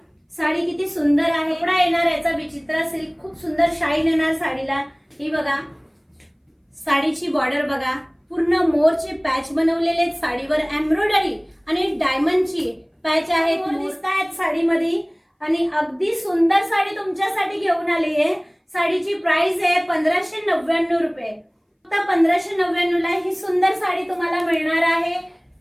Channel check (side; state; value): both; identical; correlation 1.00